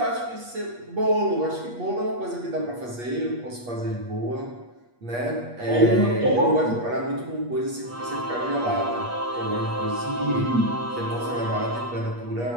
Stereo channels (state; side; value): late; left; 8.4 ms